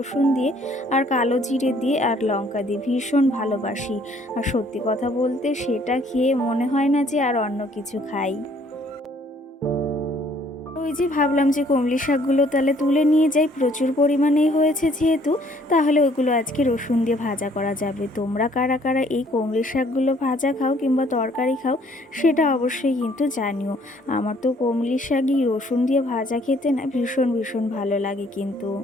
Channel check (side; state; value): both; normal; correlation 0.61